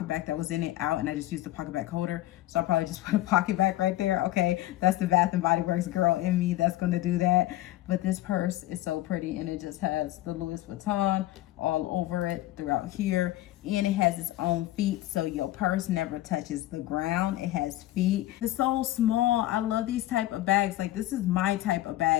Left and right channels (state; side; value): quieter; right; 15.6 dB